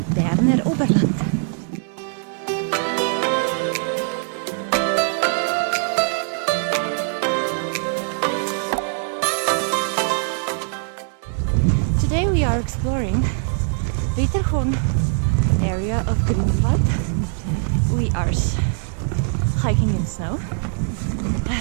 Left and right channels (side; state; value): left; silent; digital silence